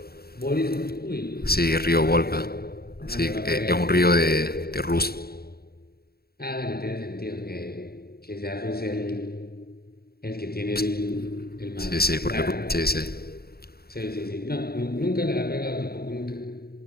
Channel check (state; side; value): late; right; 0.45 ms